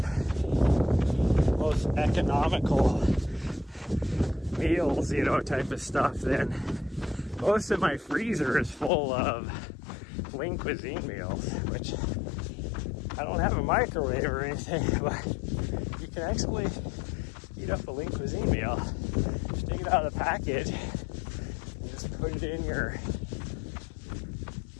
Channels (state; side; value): drops out; right; at 8.9 s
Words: most economical meals, type of stuff, then most of my freezer is full of Lean Cuisine meals, which I don't have a microwave or anything, but you can actually heat up a Lean Cuisine meal. Just take it out of the package and just put it in your